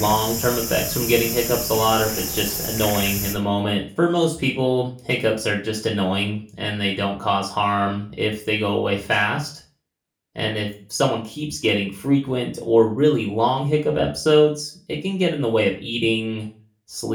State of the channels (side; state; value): both; identical; correlation 1.00